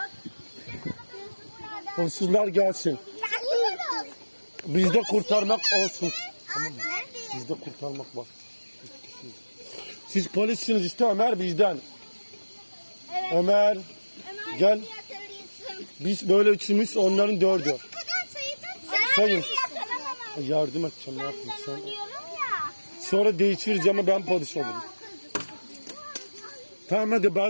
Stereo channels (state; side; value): inverted; both; correlation -1.00